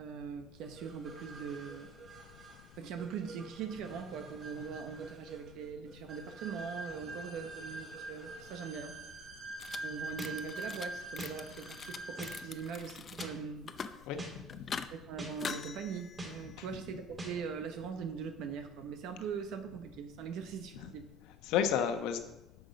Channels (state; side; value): noise; left; rumble, 17 dB below the sound